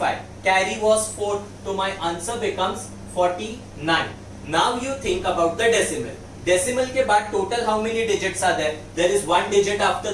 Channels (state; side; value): identical; both; correlation 1.00